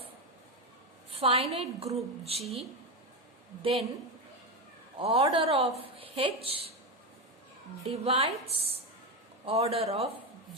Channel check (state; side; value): normal; both; correlation 0.13